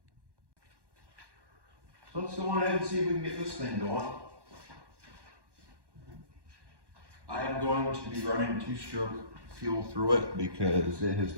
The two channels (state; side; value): late; left; 1.1 ms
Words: So let's go on ahead and see if we can get this thing going. I am going to be running 2-stroke fuel through it because it has